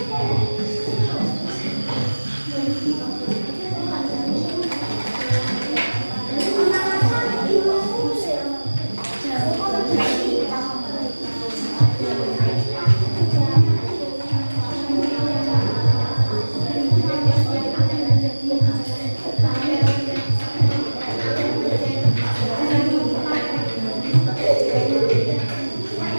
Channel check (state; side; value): inverted; both; correlation -1.00